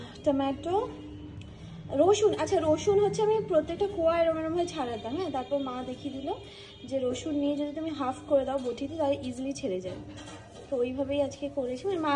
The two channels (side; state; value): both; identical; correlation 1.00